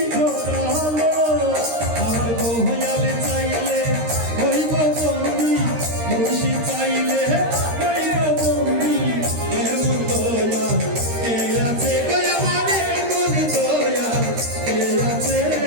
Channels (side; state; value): left; late; 13 ms